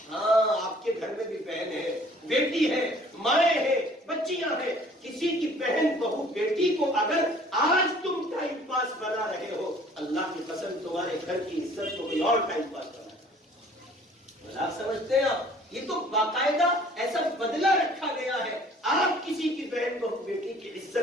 ہاں آپ کے گھر میں بھی بہن ہے، بیٹی ہے، مائیں ہیں, بچیاں ہیں. کسی کی بہن بہو بیٹی کو اگر آج تم ٹائم پاس بنا رہے ہو, اللہ کی قسم تمہارے گھر کی عزت کو کوئی اور ٹائم پاس بنا ہے. آپ سمجھتے ہیں آپ, یہ تو باقاعدہ ایسا بدلہ رکھا گیا ہے. آپ کسی کی بہن بہو بیٹی کی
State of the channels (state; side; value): normal; both; correlation 0.54